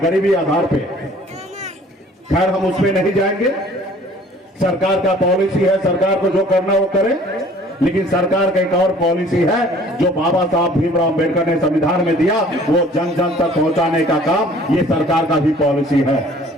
आधार पे। खैर, हम उसमें नहीं जाएंगे। सरकार का पॉलिसी है, सरकार को जो करना वो करे। लेकिन सरकार का एक और पॉलिसी है जो बाबा साहब भीमराव अम्बेडकर ने संविधान में दिया, वो जन जन तक पहुंचाने का काम ये सरकार का भी पॉलिसी है।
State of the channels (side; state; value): both; normal; correlation 0.52